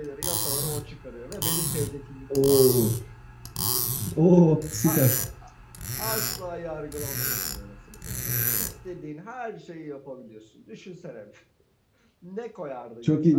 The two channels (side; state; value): both; identical; correlation 1.00